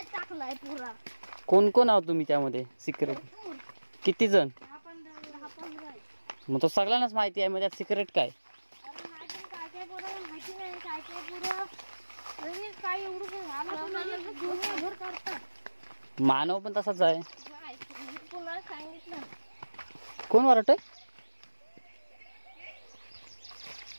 टाकलाय पुरा. कोण कोण आहोत तुम्ही त्यामध्ये सिक्रेट? किती जण? 10-15. मग तो सगळ्यांनाच माहिती आहे. मग त्यात सिक्रेट काय? काय माहिती नाही. काय पुरा काय एवढं घर काढतात. मानव पण तसाच आहे. तुला सांगितलं. कोण वरट आहे?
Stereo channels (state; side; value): inverted; both; correlation -1.00